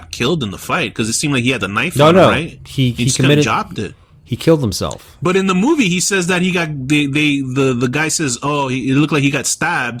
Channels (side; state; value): both; identical; correlation 1.00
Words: killed in the fight because it seemed like he had the knife on him, right? He just committed, jobbed it. He killed himself. But in the movie, he says that he got the guy says, oh, it looked like he got